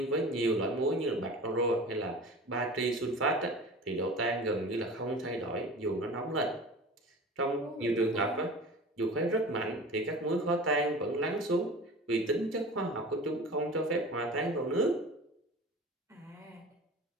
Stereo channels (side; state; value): both; normal; correlation 0.37